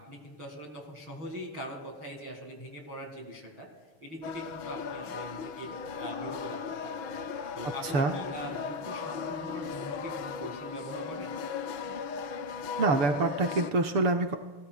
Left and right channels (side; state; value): left; late; 6.9 ms